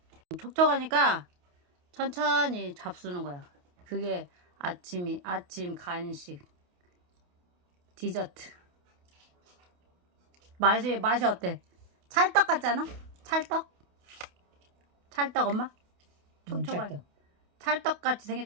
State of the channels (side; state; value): left; late; 28 ms